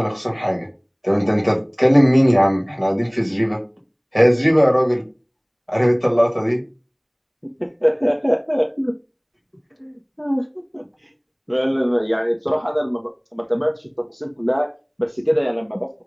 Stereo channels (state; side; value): identical; both; correlation 1.00